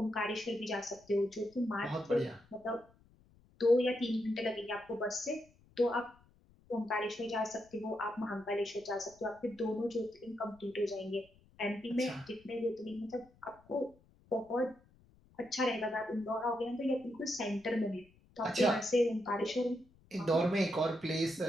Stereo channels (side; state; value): left; noise; rumble, 29 dB below the sound